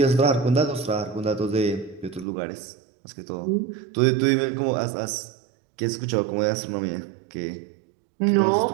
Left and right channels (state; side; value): drops out; left; at 2.2 s